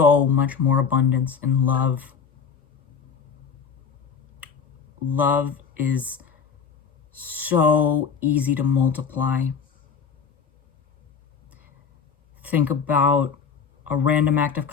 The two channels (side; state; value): right; quieter; 6.2 dB